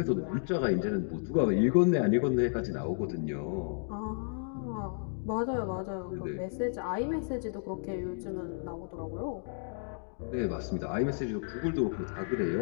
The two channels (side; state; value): right; silent; digital silence